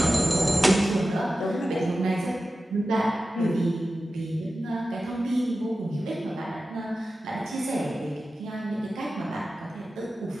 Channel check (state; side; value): normal; both; correlation 0.94